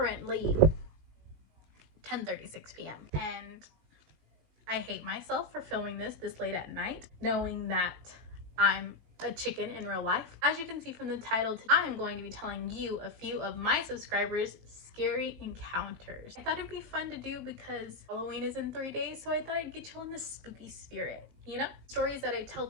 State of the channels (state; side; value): late; left; 18 ms